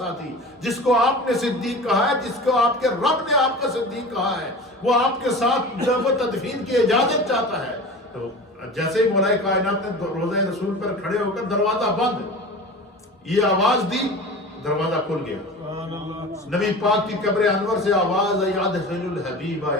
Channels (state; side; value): normal; both; correlation 0.35